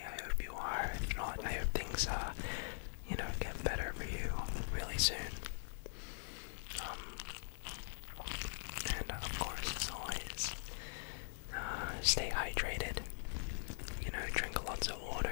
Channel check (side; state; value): right; silent; digital silence